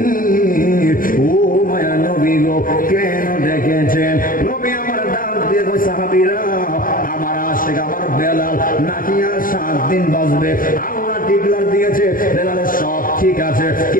ও মায়ের নবী গো, কেন ডেকেছেন? নবী আমার ডাক দিয়ে কয়, সাহাবীরা আমার আশিক আমার বেলাল নাকি আর 7 দিন বাঁচবে। আল্লাহ ডিক্লার দিয়েছে বেলালের সব ঠিক আছে,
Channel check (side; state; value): right; late; 0.40 ms